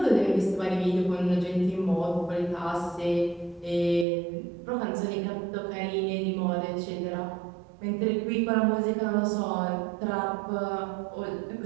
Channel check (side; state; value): left; drops out; at 4.0 s